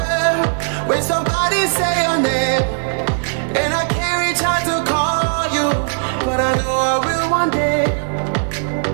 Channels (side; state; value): left; silent; digital silence